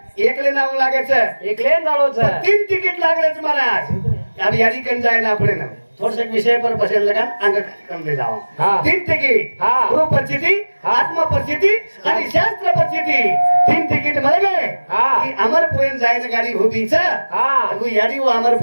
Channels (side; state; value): both; inverted; correlation -1.00